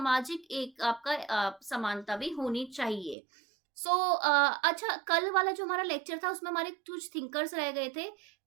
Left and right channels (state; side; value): drops out; left; at 3.2 s